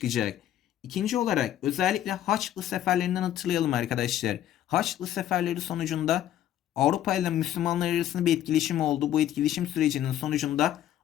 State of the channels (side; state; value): right; quieter; 11.7 dB